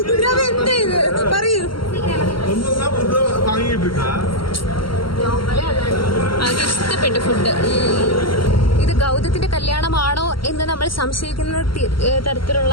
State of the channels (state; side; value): late; right; 0.73 ms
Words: കാവ്യ എന്താ ഇത് പറയൂ. ஒண்ணுதான் புதுசா வாங்கிட்டு இருக்கா? അത് ഇഷ്ടപ്പെട്ടു ഫുഡ്. ഇത് ഗൗതത്തിന്റെ കല്യാണമാണോ എന്ന് നമ്മൾ സംശയിക്കുന്ന തരത്തിലുള്ള